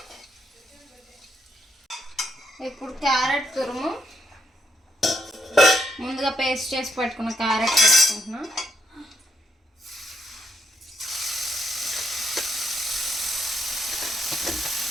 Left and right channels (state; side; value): normal; both; correlation 0.75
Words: ఇప్పుడు క్యారెట్ తురుము, ముందుగా పేస్ట్ చేసి పెట్టుకున్న క్యారెట్ వేసుకుంటున్నా.